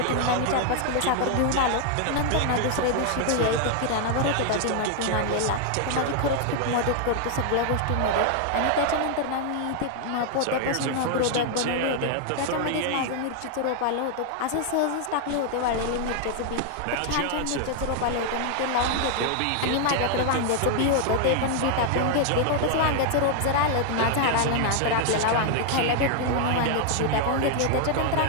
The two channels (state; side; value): different; both; correlation 0.00